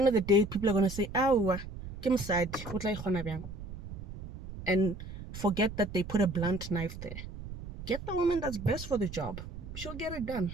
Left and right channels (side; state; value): right; noise; rumble, 11 dB below the sound